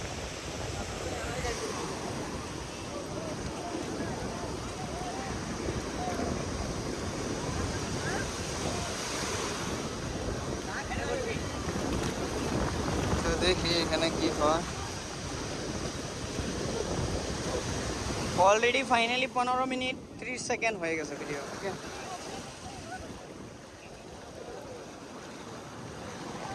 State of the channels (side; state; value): both; identical; correlation 1.00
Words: তো দেখি এখানে কি হয়। অলরেডি ফাইনালি 15 মিনিট 30 সেকেন্ড হয়ে গেছে ভিডিও। ওকে,